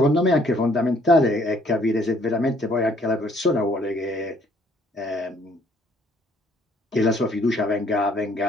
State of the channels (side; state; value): both; normal; correlation 0.63